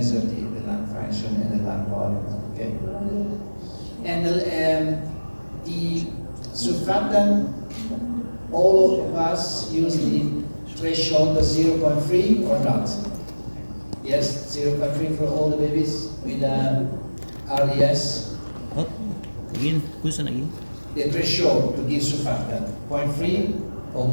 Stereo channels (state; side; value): inverted; both; correlation -1.00